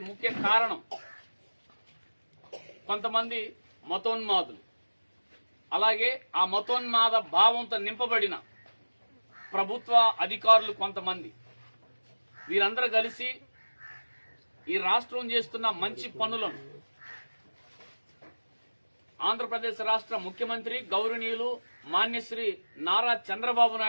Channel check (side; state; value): both; inverted; correlation -1.00